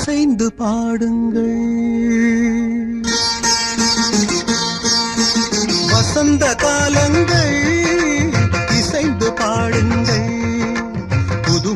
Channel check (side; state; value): both; identical; correlation 1.00